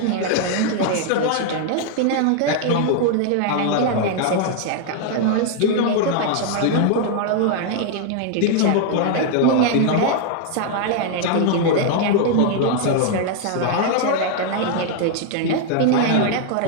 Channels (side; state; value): both; different; correlation 0.00